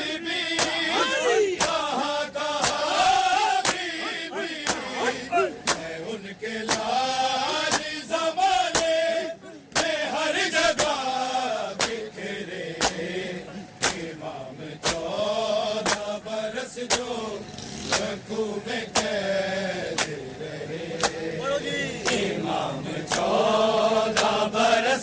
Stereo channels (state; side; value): identical; both; correlation 1.00